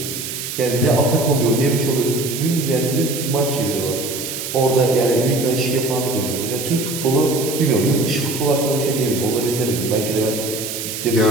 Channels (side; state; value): right; noise; hiss, 6 dB below the sound